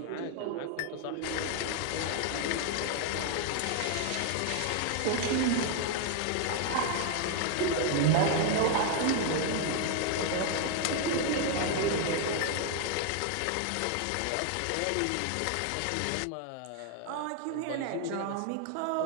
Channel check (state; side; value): different; both; correlation 0.00